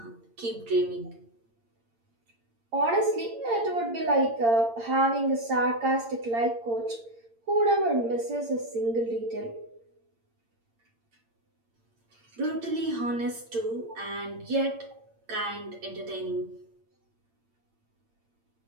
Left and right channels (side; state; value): left; late; 8.7 ms